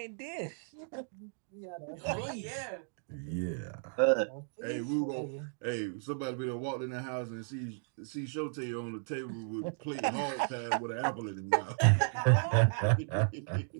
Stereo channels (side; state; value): left; silent; digital silence